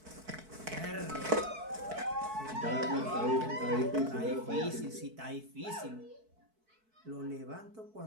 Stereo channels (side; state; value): left; late; 4.6 ms